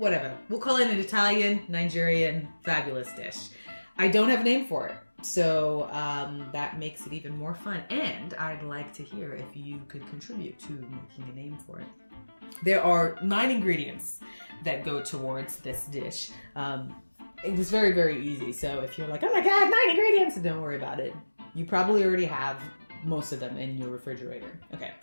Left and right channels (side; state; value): both; inverted; correlation -1.00